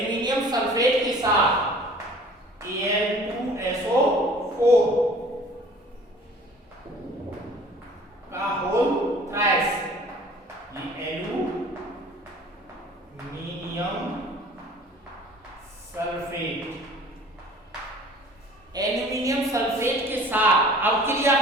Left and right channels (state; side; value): normal; both; correlation 0.48